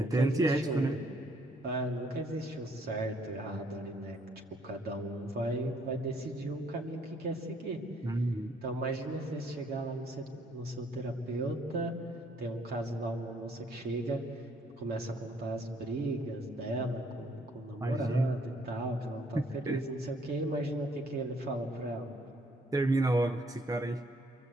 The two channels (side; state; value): both; normal; correlation 0.66